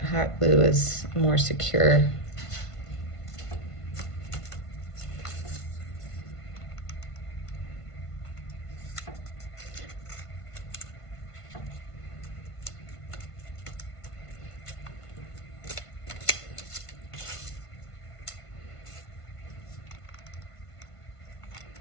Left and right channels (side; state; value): right; late; 1.5 ms